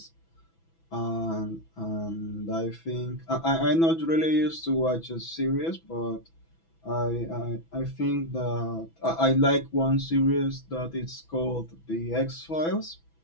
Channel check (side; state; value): right; late; 6.1 ms